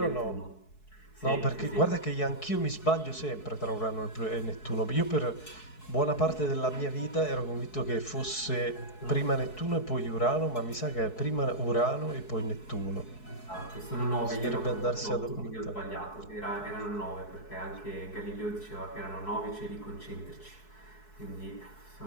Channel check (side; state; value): right; late; 4.7 ms